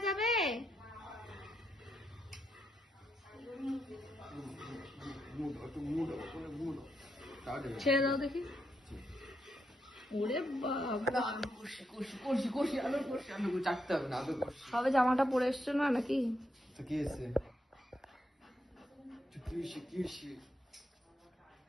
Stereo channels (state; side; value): normal; both; correlation 0.81